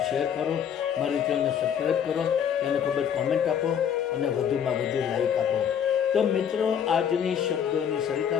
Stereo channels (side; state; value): right; quieter; 8.4 dB